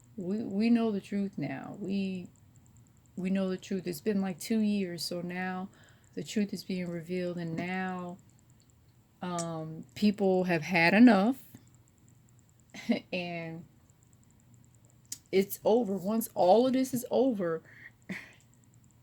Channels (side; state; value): both; identical; correlation 1.00